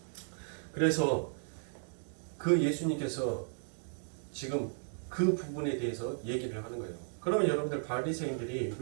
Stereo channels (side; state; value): left; silent; digital silence